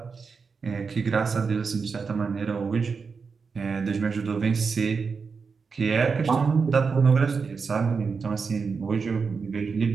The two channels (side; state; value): left; quieter; 5.2 dB